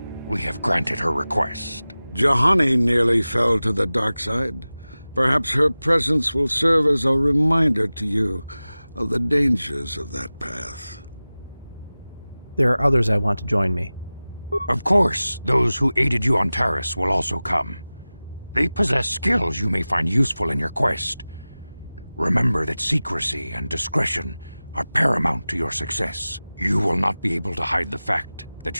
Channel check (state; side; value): inverted; both; correlation -0.97